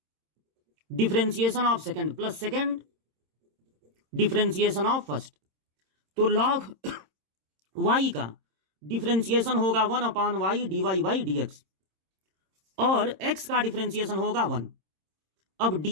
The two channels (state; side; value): late; left; 26 ms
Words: differentiation of second plus second differentiation of first. तो log y का डिफरेंशिएशन होगा 1/y dy/dx और x का डिफरेंशिएशन होगा 1। अब